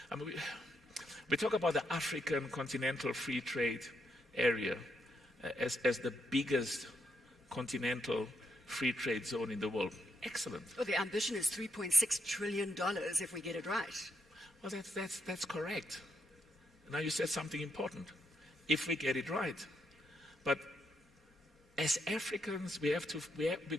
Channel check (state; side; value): normal; both; correlation 0.79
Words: I mean, we talk about the African continental free trade area as the biggest continental free trade zone in the world. Excellent. Well, the ambition is $3.6 trillion if we get it right. Well, that's correct. Now you said something important. If we get it right. But as Africans, we have